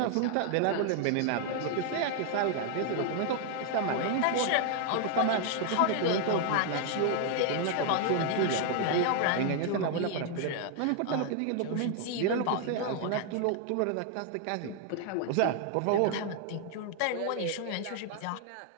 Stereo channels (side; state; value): both; different; correlation 0.00